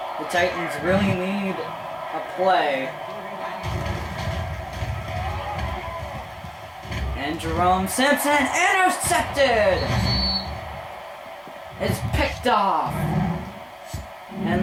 Titans really need a play. And Jerome Simpson intercepted! It's picked off.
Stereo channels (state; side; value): identical; both; correlation 1.00